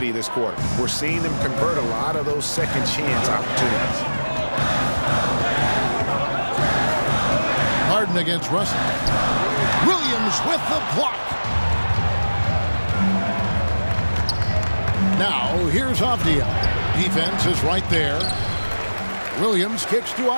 this quarter. We're seeing them convert a lot of those second chance opportunities. Harden against Russell. Williams with the block. Now, here's Avdia. Defense is right there. Williams kicks to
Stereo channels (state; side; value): inverted; both; correlation -1.00